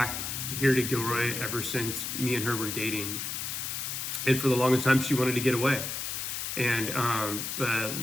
here to Gilroy ever since me and her were dating. And for the longest time, she wanted to get away. And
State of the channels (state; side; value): noise; left; hiss, 4 dB below the sound